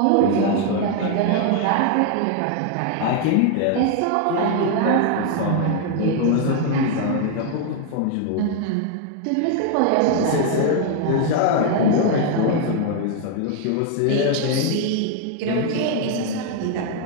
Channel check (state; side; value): different; both; correlation 0.00